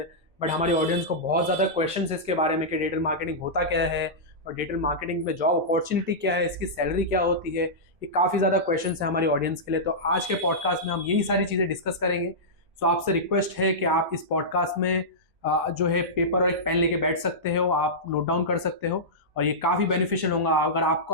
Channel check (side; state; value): both; normal; correlation -0.13